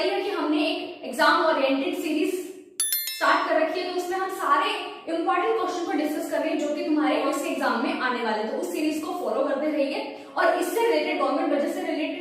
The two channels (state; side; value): identical; both; correlation 1.00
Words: है कि हमने एक एग्जाम ओरिएंटेड सीरीज स्टार्ट कर रखी है, तो उसमें हम सारे इंपॉर्टेंट क्वेश्चन को डिस्कस कर रहे हैं जो कि तुम्हारे इस एग्जाम में आने वाले, तो उस सीरीज को फॉलो करते रहिए। और इससे रिलेटेड, गवर्नमेंट बजट से